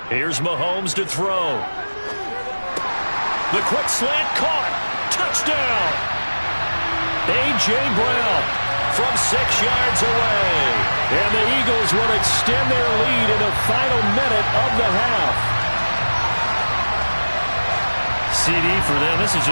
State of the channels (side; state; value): both; inverted; correlation -1.00